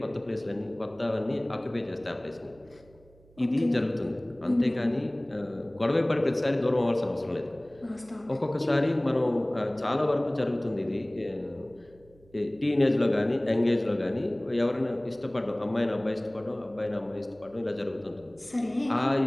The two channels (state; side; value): noise; right; hum, 27 dB below the sound